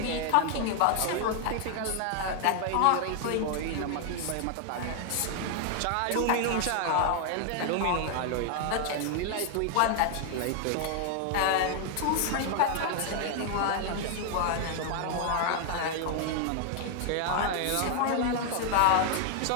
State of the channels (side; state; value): both; different; correlation 0.00